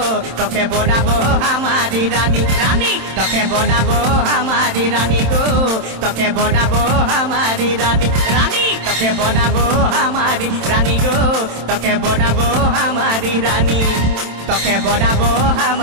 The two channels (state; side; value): late; left; 27 ms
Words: তোকে বনাবো হামারি রানী রানী তোকে বনাবো হামারি রানী গো তোকে বনাবো হামারি রানী রানী তোকে বনাবো হামারি রানী গো তোকে বনাবো হামারি রানী তোকে বনাবো